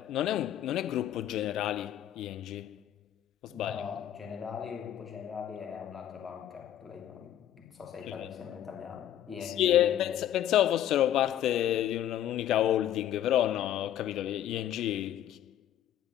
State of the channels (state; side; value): quieter; right; 11.4 dB